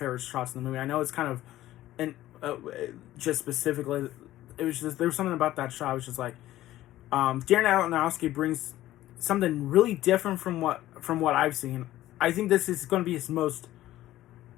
shots in the movie. I know it's kind of, and just specifically, it was just, there was something about that shot. It was just Darren Aronofsky brings something really different from what I've seen. I think this is going to be his most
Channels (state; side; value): quieter; right; 14.8 dB